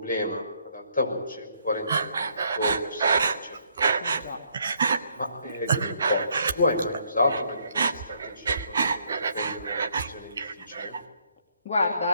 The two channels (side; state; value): both; inverted; correlation -0.69